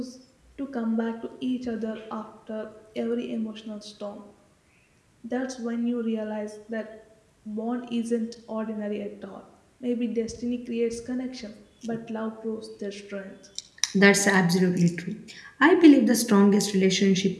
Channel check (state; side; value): identical; both; correlation 1.00